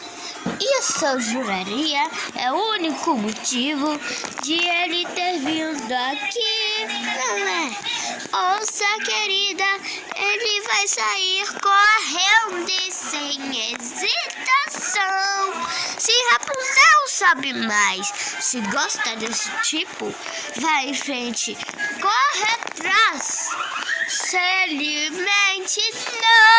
Isso eu juraria é o único motivo de ele ter vindo aqui, não é? Ouça, querida, ele vai sair correndo e sem hesitação. Se Rapunzel sabe mais, se gosta desse tipo, vai em frente, corre atrás. Se alimente,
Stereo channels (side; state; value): both; identical; correlation 1.00